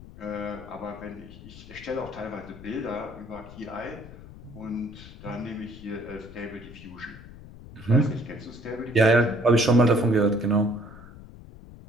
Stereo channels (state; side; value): noise; left; rumble, 17 dB below the sound